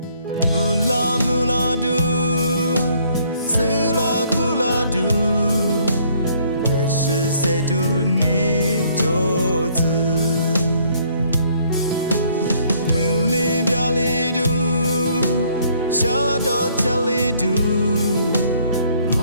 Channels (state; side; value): inverted; both; correlation -0.64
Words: 乌拉木拉嘟。Sela kula du, 也是谁读你就子，门里表里读，下到家里读，